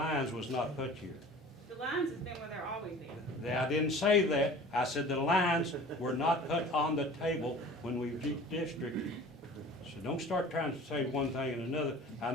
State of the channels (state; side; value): normal; both; correlation 0.43